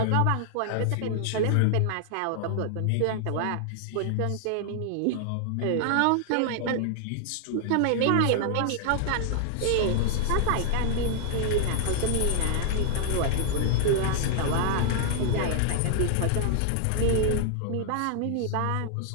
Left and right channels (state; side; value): different; both; correlation -0.01